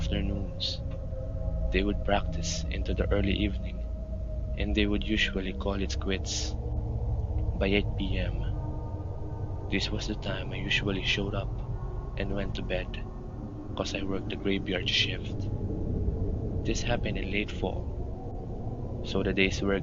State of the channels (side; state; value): both; identical; correlation 1.00